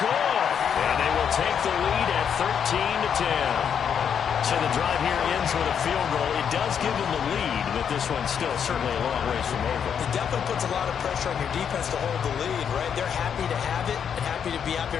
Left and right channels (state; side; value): quieter; right; 7.8 dB